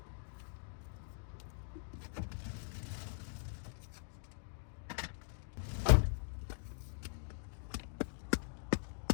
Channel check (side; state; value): right; silent; digital silence